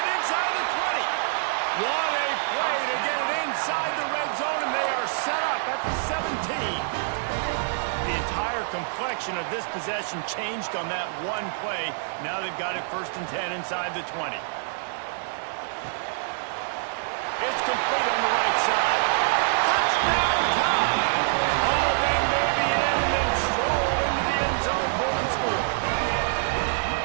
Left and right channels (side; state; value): left; silent; digital silence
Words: inside the 20. What a play to get it inside the red zone, and they are set up at the 17. The entire complexion of this possession changed on that one play. Now they've got it 1st and 10 inside the 20. It's complete on the right side. Touchdown time! All that baby in and then stroll into the end zone for the score.